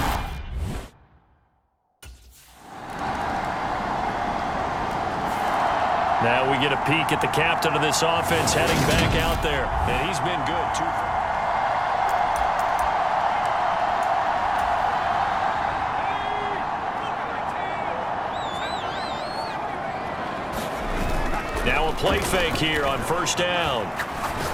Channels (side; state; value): both; identical; correlation 1.00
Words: Now we get a peek at the captain of this offense heading back out there. And he's been good, too. Now a play fake here on first down.